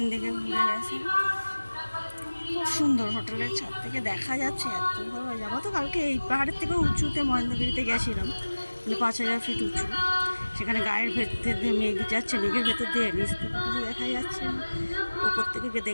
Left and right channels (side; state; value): both; inverted; correlation -1.00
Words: দিকে ঘুরে গেছে। খুব সুন্দর, হোটেলের ছাদ থেকে দেখা যাচ্ছে, এত ভালো লাগে। আমরা তো কালকে এই পাহাড়ের থেকে উঁচুতে মহেন্দ্রগিরিতে গেছিলাম, মানে 5000 ফিট উঁচু। সেখানে গায়ের ভেতর দিয়ে মেঘ যাচ্ছে, মেঘের ভেতর দিয়ে নিচ থেকে কিছু দেখা যাচ্ছে না।